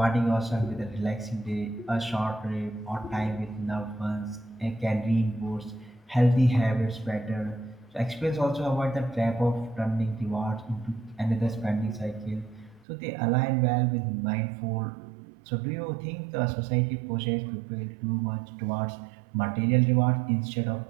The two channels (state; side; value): drops out; left; at 12.9 s